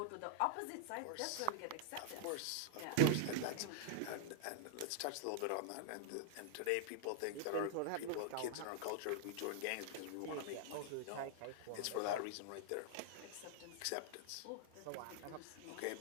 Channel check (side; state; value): both; different; correlation -0.01